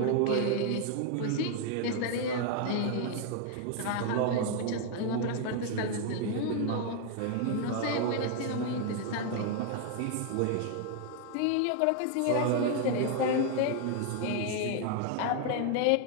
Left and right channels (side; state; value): both; different; correlation 0.00